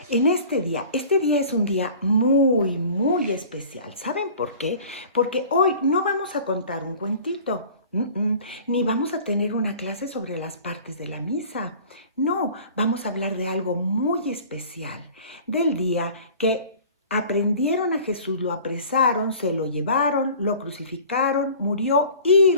en este día. Este día es un día muy especial. ¿Saben por qué? Porque hoy no vamos a contar un cuentito, ni vamos a tener una clase sobre las partes de la misa. No, vamos a hablar de algo muy especial, del día que aprendieron a Jesús, lo apresaron, se lo llevaron, lo crucificaron, murió y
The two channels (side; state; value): both; inverted; correlation -0.45